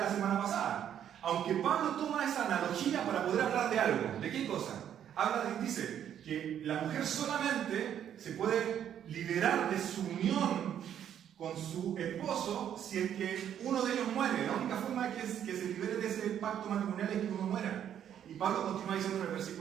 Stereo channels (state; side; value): quieter; left; 9.7 dB